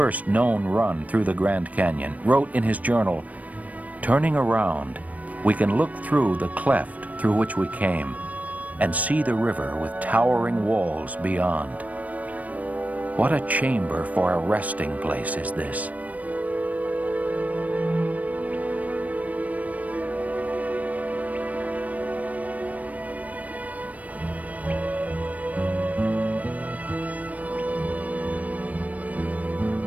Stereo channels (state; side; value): late; left; 0.071 ms